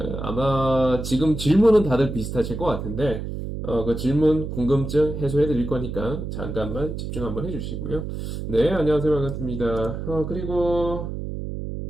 아마 지금 질문은 다들 비슷하실 것 같은데, 그 질문, 궁금증 해소해 드릴 거니까 잠깐만 집중 한번 해주시고요. 네, 안녕하세요. 반갑습니다. 그리고,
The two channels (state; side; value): noise; right; hum, 6 dB below the sound